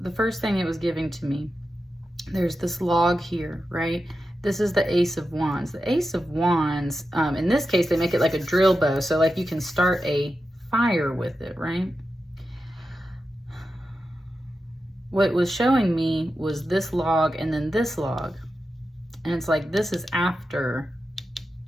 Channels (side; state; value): both; normal; correlation 0.90